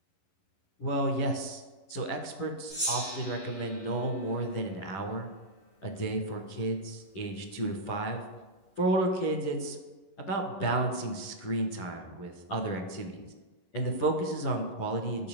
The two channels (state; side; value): late; right; 11 ms